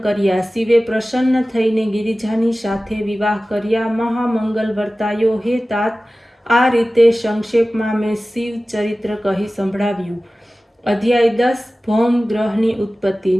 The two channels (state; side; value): normal; both; correlation 0.96